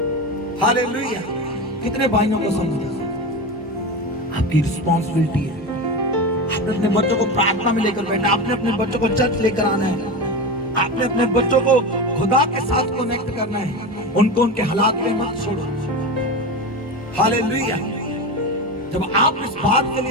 हालेलुया। कितने भाइयों को समझे? आपकी रिस्पॉन्सिबिलिटी है। आपने अपने बच्चों को प्रार्थना में लेकर बैठना, आपने अपने बच्चों को चर्च लेकर आना है, आपने अपने बच्चों को खुदा के साथ कनेक्ट करना है। उनको उनके हालात में मत छोड़ो। हालेलुया। जब आप इस बात के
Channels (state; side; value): normal; both; correlation 0.23